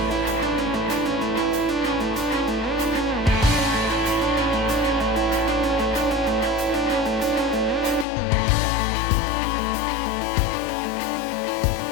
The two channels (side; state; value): right; drops out; at 8.1 s